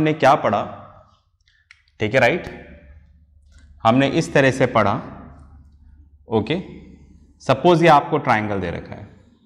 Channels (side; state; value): both; identical; correlation 1.00